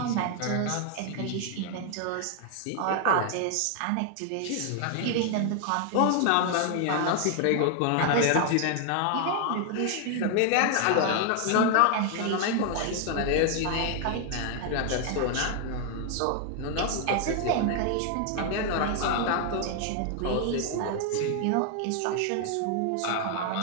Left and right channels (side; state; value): both; different; correlation 0.00